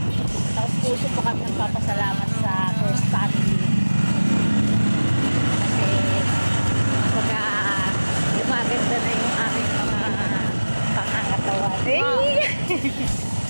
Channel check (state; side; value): inverted; both; correlation -1.00